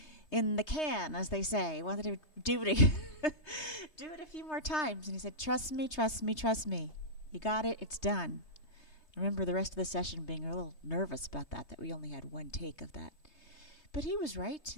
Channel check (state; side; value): late; right; 3.2 ms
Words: in the can, as they say. I wanted to do it, do it a few more times. And he said, trust me, trust me, trust me. You got it. It's done. I remember the rest of the session being a little nervous about that we only had one take of that. But he was right,